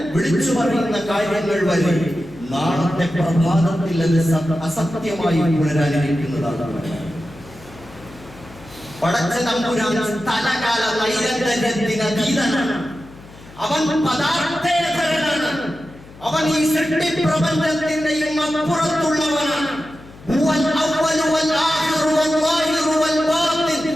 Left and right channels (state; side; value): noise; left; hum, 21 dB below the sound